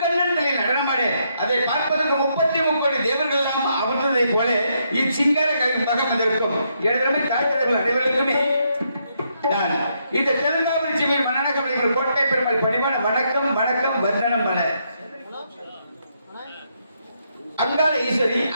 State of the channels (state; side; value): inverted; both; correlation -0.77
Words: நடனமாடு அதை பார்ப்பதற்கு 33 கோடி தேவர்கள் எல்லாம் அமர்ந்ததை போல இச்சிங்கார கவி மகம் வந்திருக்கும். எனதருமை தாய்த்தலைவர்கள் அனைவருக்குமே நான் இந்த தெலுங்காபுரி சிவின் மன்னனகமலைகள் கோட்டை பெருமாள் பணிவான வணக்கம் வணக்கம் வந்தனம் பல. அங்காள ஈஸ்வரி